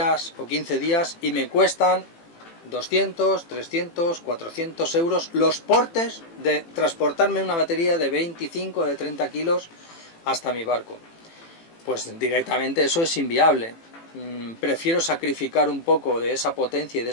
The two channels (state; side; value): late; right; 18 ms